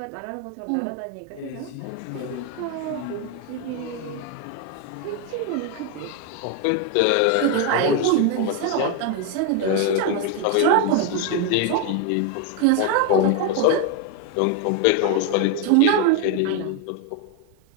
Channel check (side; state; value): both; different; correlation 0.01